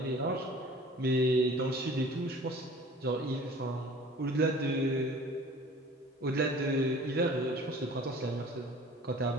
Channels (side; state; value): both; normal; correlation 0.46